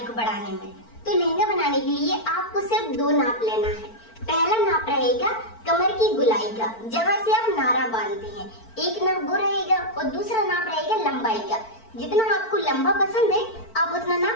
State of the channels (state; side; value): late; right; 4.5 ms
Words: को बढ़ाने में। तो लहंगा बनाने के लिए आपको सिर्फ दो नाप लेना है। पहला नाप रहेगा कमर की गुलाई का, जहाँ से आप नारा बांधते हैं। एक नाप वो रहेगा और दूसरा नाप रहेगा लंबाई का। जितना आपको लंबा पसंद है आप उतना